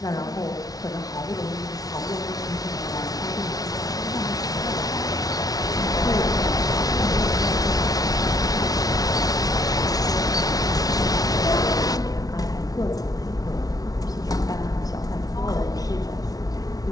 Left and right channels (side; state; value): right; late; 0.18 ms